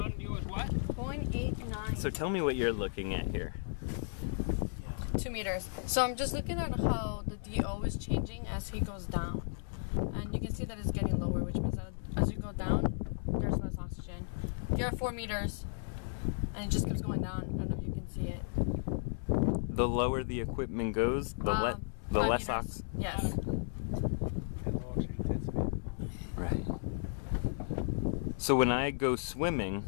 DO is what? 0.89. So tell me what you're looking at here. 2 meters. So I'm just looking at how the DO is changing as he goes down. And you can see that it's getting lower, which means that as you go down, there's less oxygen. You're at 4 meters, and it just keeps going down. I don't know if you can see it. The lower the equipment goes, the less oxygen. Yes. Right. So when I go swimming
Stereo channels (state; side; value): silent; right; digital silence